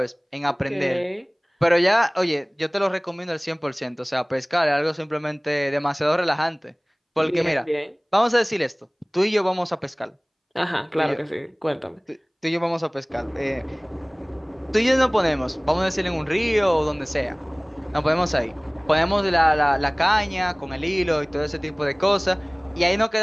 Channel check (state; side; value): identical; both; correlation 1.00